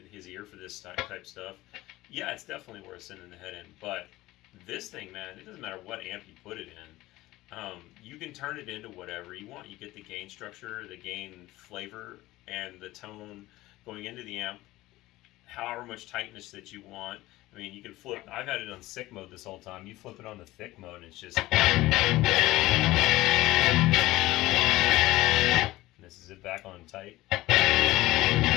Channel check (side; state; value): right; quieter; 17.9 dB